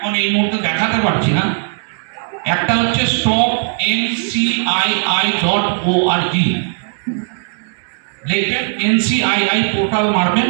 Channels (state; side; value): silent; left; 68 dB below the other